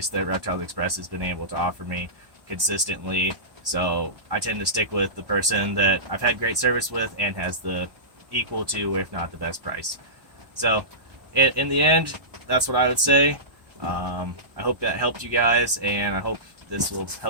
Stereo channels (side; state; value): left; late; 1.1 ms